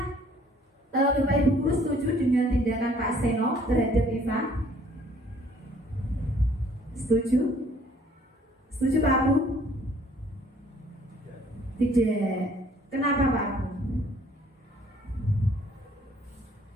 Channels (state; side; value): normal; both; correlation 0.59